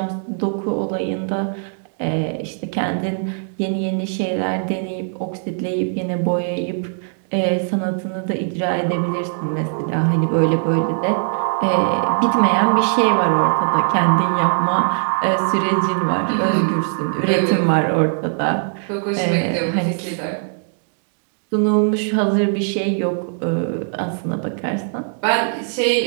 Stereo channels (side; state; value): left; silent; digital silence